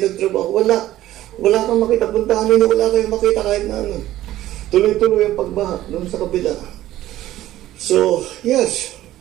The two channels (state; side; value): quieter; left; 14.4 dB